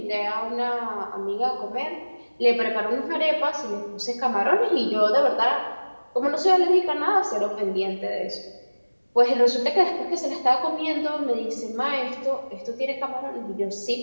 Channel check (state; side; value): inverted; both; correlation -1.00